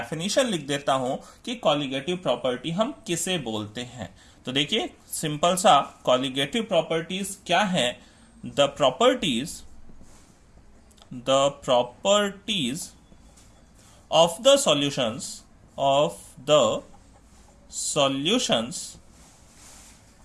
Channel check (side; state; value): both; identical; correlation 1.00